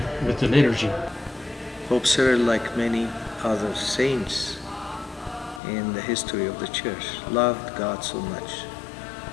the liturgy. Pope Cyril, like many other saints in the history of the church, loved God so much.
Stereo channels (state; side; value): drops out; right; at 5.6 s